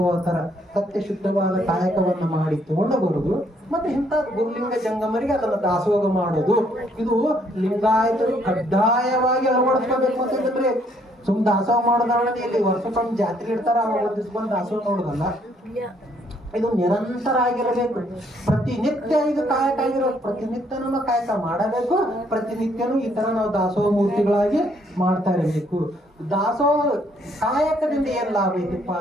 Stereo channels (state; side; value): normal; both; correlation 0.68